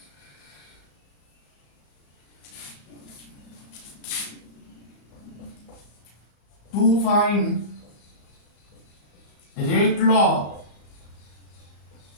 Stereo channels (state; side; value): late; right; 35 ms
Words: to find rate law